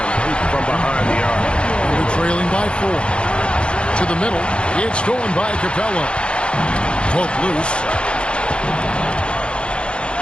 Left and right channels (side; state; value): right; late; 0.056 ms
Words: from behind the arc. We're trailing by 4. To the middle. It's stolen by Capella. Poke loose.